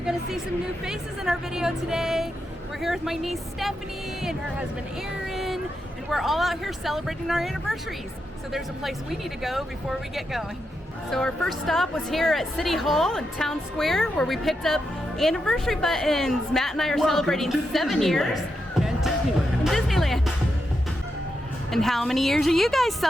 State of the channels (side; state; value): both; normal; correlation 0.85